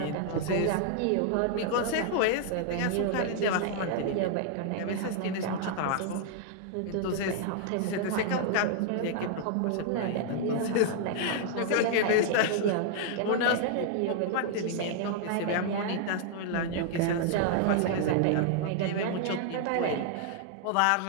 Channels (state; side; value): different; both; correlation -0.01